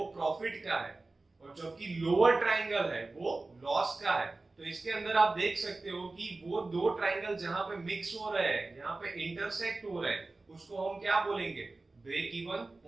प्रॉफिट का है और जबकि लोअर ट्राइंगल है वो लॉस का है। तो इसके अंदर आप देख सकते हो कि वो दो ट्राइंगल जहां पे मिक्स हो रहे हैं, यहाँ पे इंटरसेक्ट हो रहे हैं, उसको हम क्या बोलेंगे? Break even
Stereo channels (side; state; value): left; quieter; 3.3 dB